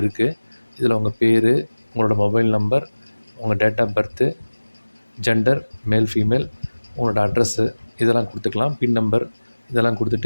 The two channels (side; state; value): both; inverted; correlation -1.00